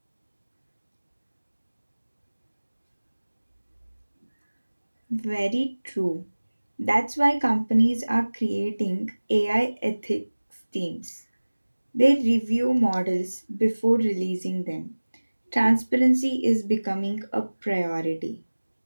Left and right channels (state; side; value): inverted; both; correlation -1.00